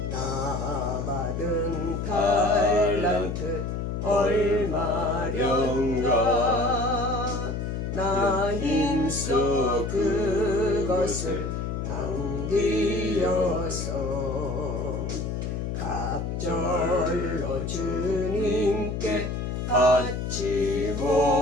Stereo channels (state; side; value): noise; left; hum, 3 dB below the sound